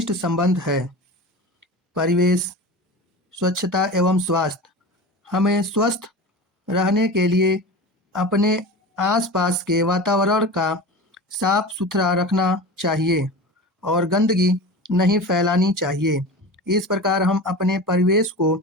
संबंध है। परिवेश, स्वच्छता एवं स्वास्थ्य। हमें स्वस्थ रहने के लिए अपने आसपास के वातावरण का साफ सुथरा रखना चाहिए और गंदगी नहीं फैलानी चाहिए। इस प्रकार हम अपने परिवेश को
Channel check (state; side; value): normal; both; correlation 0.31